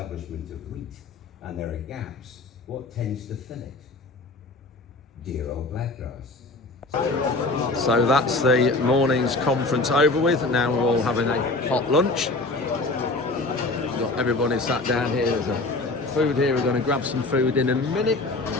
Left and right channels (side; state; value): right; quieter; 3.1 dB